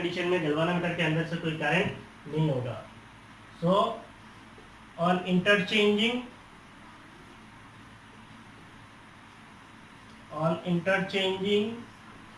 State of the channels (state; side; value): identical; both; correlation 1.00